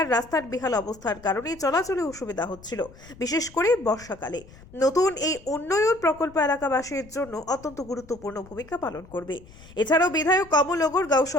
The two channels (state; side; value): noise; left; rumble, 21 dB below the sound